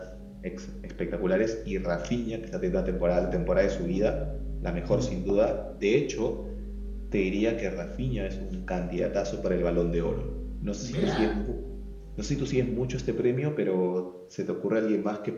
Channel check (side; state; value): both; identical; correlation 1.00